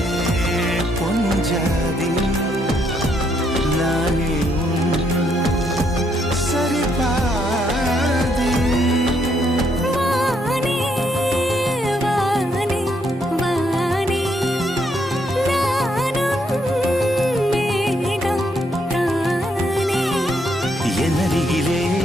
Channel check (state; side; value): normal; both; correlation 0.73